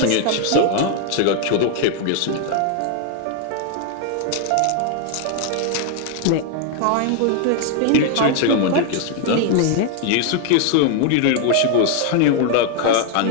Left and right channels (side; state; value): both; different; correlation 0.00